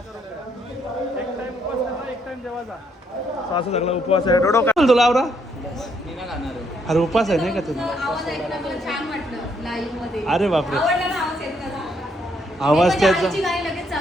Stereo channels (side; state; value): both; normal; correlation 0.72